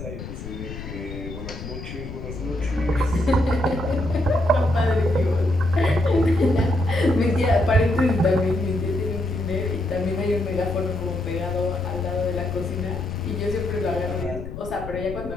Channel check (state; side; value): noise; left; rumble, 9 dB below the sound